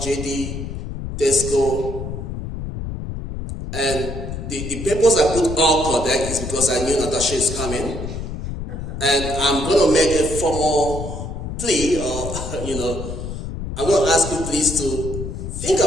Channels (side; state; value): left; noise; rumble, 6 dB below the sound